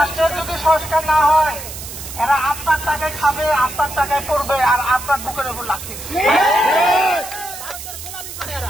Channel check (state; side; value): noise; right; hiss, 11 dB below the sound